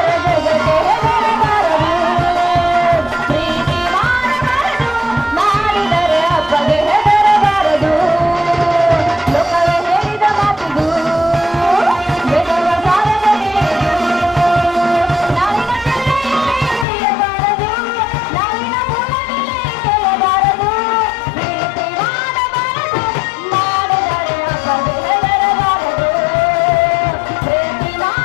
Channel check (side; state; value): right; drops out; at 16.9 s